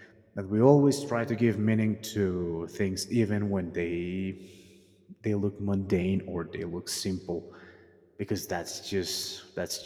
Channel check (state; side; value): identical; both; correlation 1.00